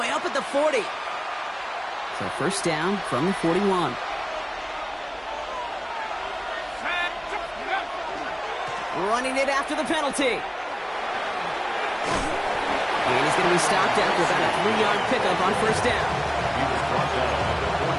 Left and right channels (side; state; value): both; identical; correlation 1.00